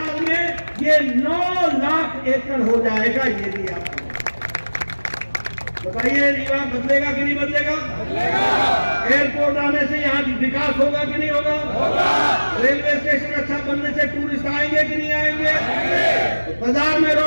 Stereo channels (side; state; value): both; inverted; correlation -1.00